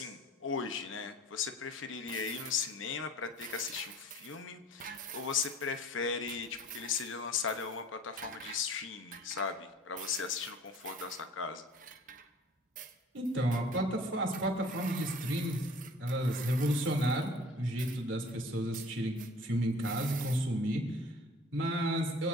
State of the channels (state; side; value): normal; both; correlation 0.48